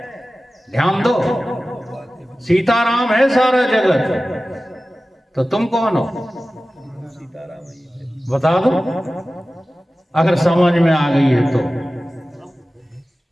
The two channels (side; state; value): both; normal; correlation 0.96